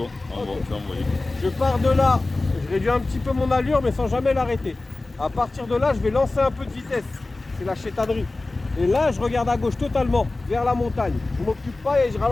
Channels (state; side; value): quieter; right; 3.1 dB